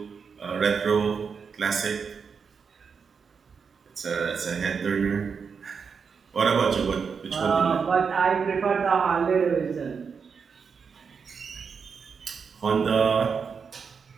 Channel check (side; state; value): left; quieter; 5.9 dB